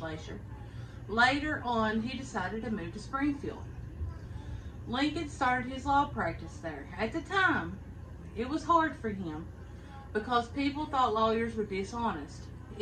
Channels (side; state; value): both; identical; correlation 1.00